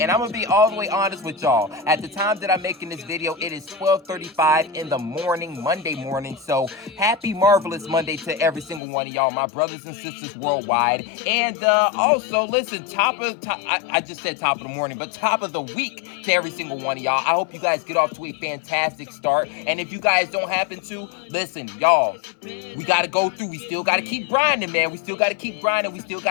I'm going to be all the way honest with y'all. At the time that I'm making this video, it is 12:35 in the morning, Monday morning. So happy marvelous Monday to every single one of y'all, my brothers and sisters worldwide. And also, listen, I just said top of the morning, but top of the week to every single one of y'all. I hope you guys get off to a fantastic start. And if you guys don't happen to, listen, y'all, we got to go through. We still got to keep grinding, man. We still got to keep grinding. We still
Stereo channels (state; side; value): drops out; right; at 8.8 s